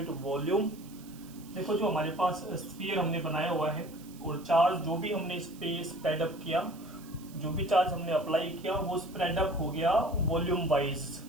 वॉल्यूम। देखो, जो हमारे पास स्फीयर हमने बनाया हुआ है और चार्ज जो भी हमने इस पे स्प्रेड अप किया, जो भी चार्ज हमने अप्लाई किया वो स्प्रेड अप हो गया वॉल्यूम वाइज।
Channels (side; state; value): right; noise; hiss, 22 dB below the sound